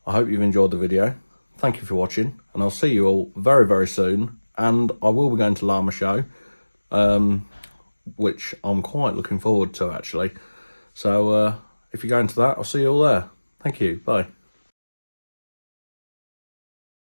I hope you've enjoyed the video. Thank you for watching, and I'll see you all very, very soon. And I will be going to Llama Show, which I'm quite looking forward to, actually. So if you're going to that, I'll see you all there. Thank you. Bye.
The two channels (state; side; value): inverted; both; correlation -1.00